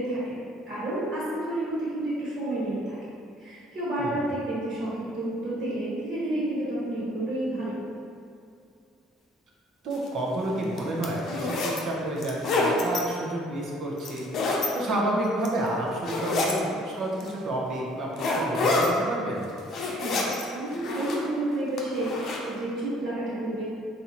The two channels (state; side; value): normal; both; correlation 0.57